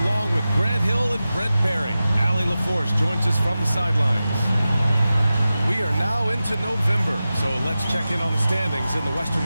along with Grant Hill and Brent Barry. Allie LaForce joins us from the sidelines. We are now into November, so let's check in on the standings in the Western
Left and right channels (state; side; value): inverted; both; correlation -0.94